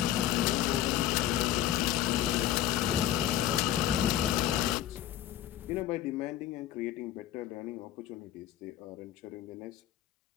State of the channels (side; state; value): right; quieter; 12.1 dB